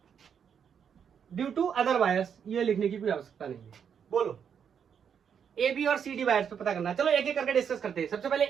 due to other wires. ये लिखने की कोई आवश्यकता नहीं है। बोलो AB और CD वायर्स पे पता करना है। चलो एक एक करके डिस्कस करते हैं। सबसे पहले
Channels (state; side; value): quieter; left; 7.6 dB